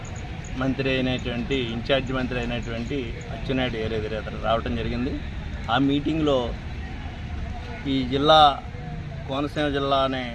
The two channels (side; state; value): both; identical; correlation 1.00